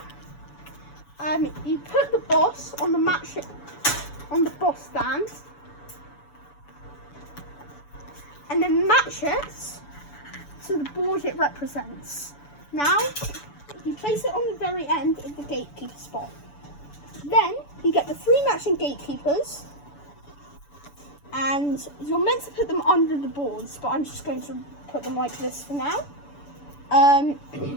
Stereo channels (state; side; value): late; right; 7.0 ms